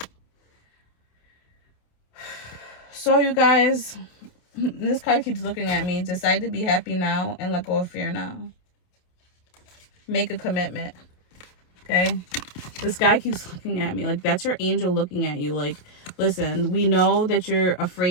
So you guys, this card keeps looking at me. Decide to be happy now and let go of fear now. Make a commitment. Okay? This guy keeps looking at me. Like, that's your angel looking at you. Like, listen, we know that you're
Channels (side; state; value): right; late; 28 ms